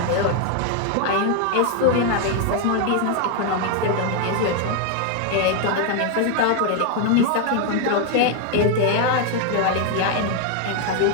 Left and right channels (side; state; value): both; different; correlation 0.01